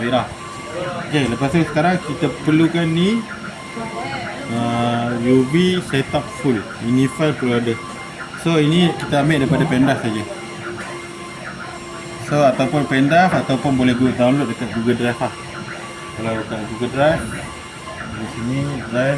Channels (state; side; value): identical; both; correlation 1.00